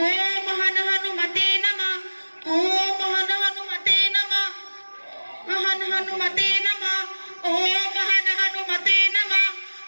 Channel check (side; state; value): both; inverted; correlation -1.00